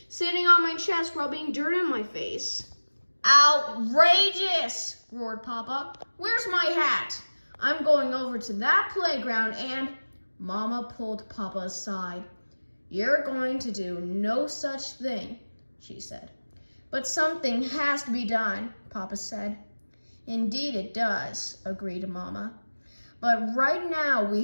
sitting on my chest rubbing dirt in my face." "Outrageous!" roared Papa. "Where's my hat? I'm going over to that playground and—" Mama pulled Papa aside. "You're going to do no such thing," she said. "But something has to be done," Papa said. "Indeed it does," agreed Mama. "But right now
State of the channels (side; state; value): both; inverted; correlation -1.00